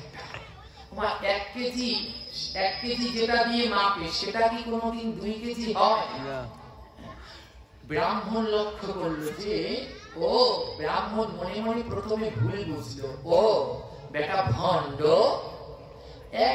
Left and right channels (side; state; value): both; identical; correlation 1.00